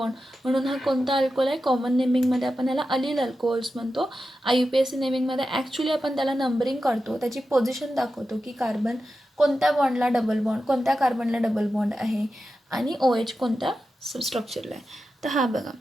म्हणून हा कोणता अल्कोहोल आहे? कॉमन नेमिंगमध्ये आपण ह्याला अलील अल्कोहोल्स म्हणतो. IUPAC नेमिंगमध्ये ॲक्च्युली आपण त्याला नंबरिंग करतो, त्याची पोझिशन दाखवतो की कार्बन कोणत्या बॉन्डला डबल बॉन्ड, कोणत्या कार्बनला डबल बॉन्ड आहे आणि OH कोणत्या स्ट्रक्चरला आहे. तर हा बघा,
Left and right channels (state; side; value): normal; both; correlation 0.91